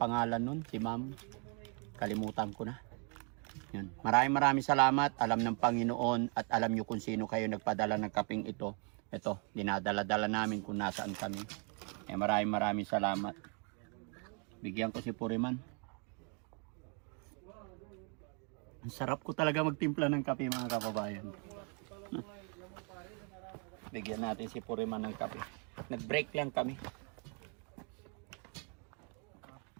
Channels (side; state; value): left; quieter; 37.4 dB